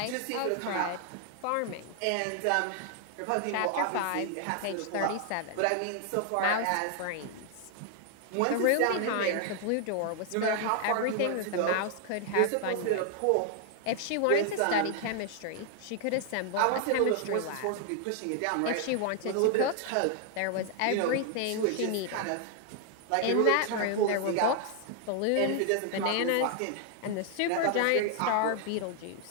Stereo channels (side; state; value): both; different; correlation 0.00